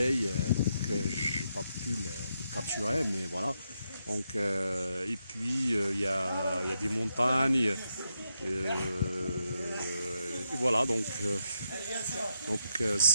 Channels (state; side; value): inverted; both; correlation -0.82